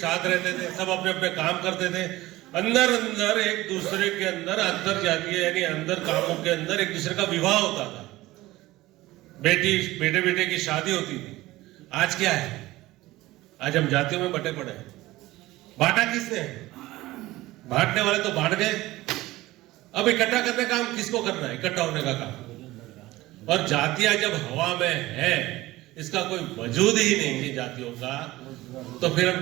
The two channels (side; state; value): left; quieter; 18.0 dB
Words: रहते थे, सब अपने अपने काम करते थे। अंदर अंदर एक दूसरे के अंदर अंतर जातीय यानी अंदर कामों के अंदर एक दूसरे का विवाह होता था, बेटे बेटे की शादी होती थी। आज क्या है? आज हम जातियों में बटे पड़े हैं। बांटा किसने? बांटने वाले तो बांट गए। अब इकट्ठा करने का काम किसको करना है? इकट्ठा होने का काम। और जातियां जब हवा में है, इसका कोई वजूद ही नहीं है जातियों का, तो फिर